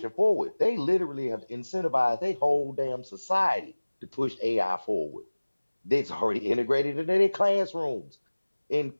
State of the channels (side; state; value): both; inverted; correlation -1.00